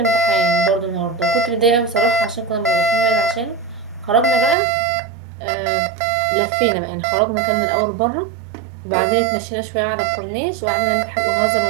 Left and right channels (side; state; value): left; drops out; at 4.5 s